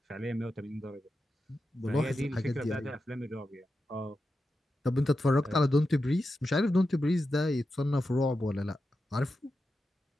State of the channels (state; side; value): normal; both; correlation 0.90